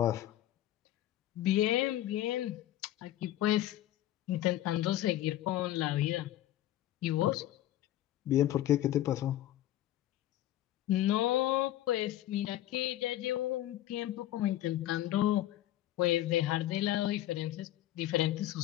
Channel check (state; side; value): quieter; right; 13.7 dB